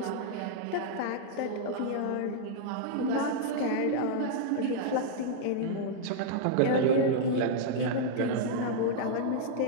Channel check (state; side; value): different; both; correlation -0.01